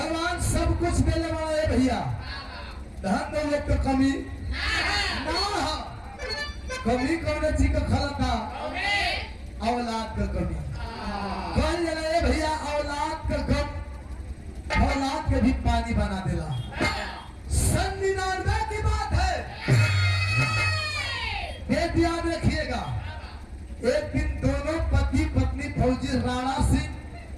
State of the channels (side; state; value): both; identical; correlation 1.00